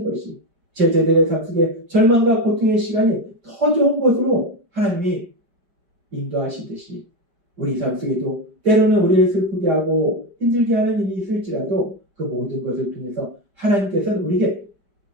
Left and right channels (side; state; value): left; late; 5.1 ms